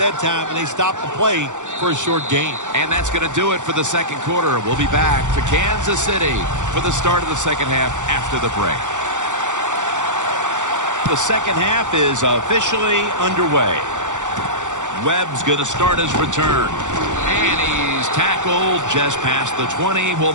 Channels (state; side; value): late; left; 0.85 ms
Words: time, and they stopped the play for a short gain. And that's going to do it for the second quarter. We'll be back to Kansas City for the start of the second half after the break. The second half is officially underway. Webb's going to start his return. And he's tackled just past the 20. We'll